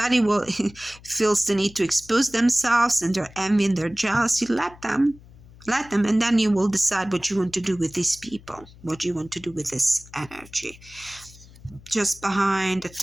feels the need to expose themselves and their envy and their jealousy, let them. Let them, and then you will decide what you want to do with these people, what you want to do with this energy. Just behind the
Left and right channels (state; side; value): noise; left; hum, 22 dB below the sound